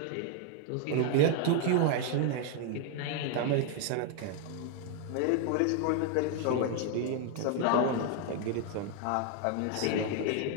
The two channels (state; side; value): different; both; correlation 0.01